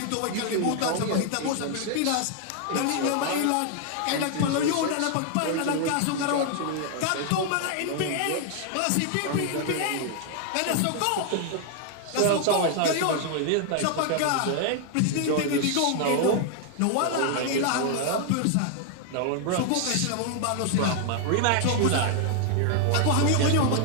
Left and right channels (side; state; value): both; different; correlation 0.00